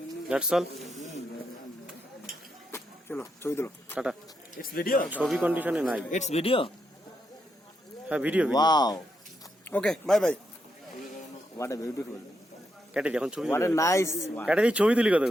দ্যাটস অল চলো ছবি দিলো টাটা It's video. ছবি কন্ডিশনে নাই It's video. হ্যাঁ video Wow. Okay bye bye What a beautiful. কেটে দি এখন ছবি What a তুলি। nice one. কেটে দি ছবি তুলি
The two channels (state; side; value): normal; both; correlation 0.81